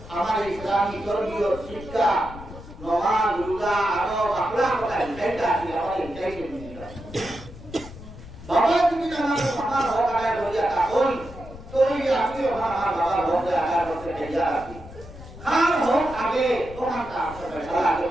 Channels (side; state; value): left; noise; rumble, 15 dB below the sound